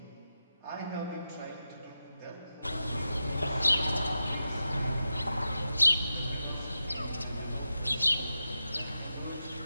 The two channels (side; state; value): both; inverted; correlation -0.90